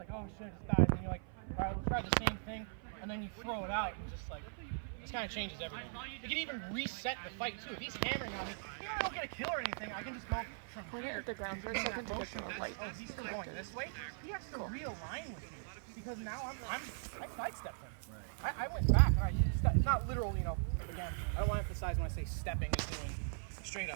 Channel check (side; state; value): left; silent; 51 dB below the other